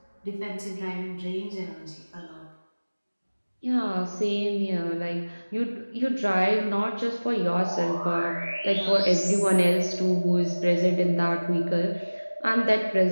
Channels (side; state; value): both; inverted; correlation -1.00